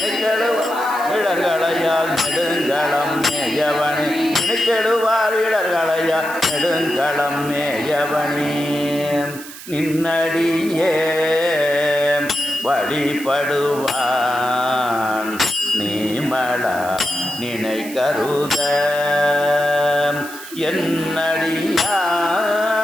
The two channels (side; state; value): right; noise; hiss, 14 dB below the sound